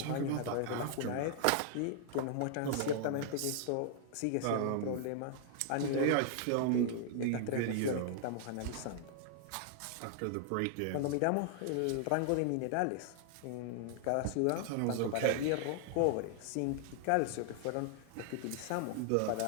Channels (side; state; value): both; different; correlation -0.01